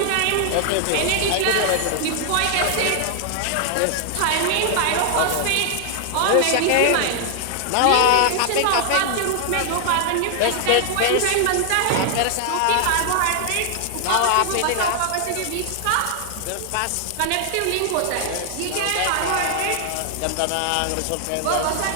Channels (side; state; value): both; different; correlation 0.00